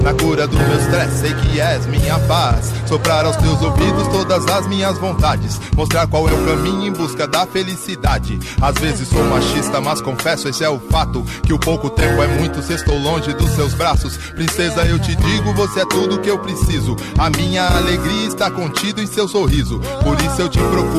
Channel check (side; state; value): both; identical; correlation 1.00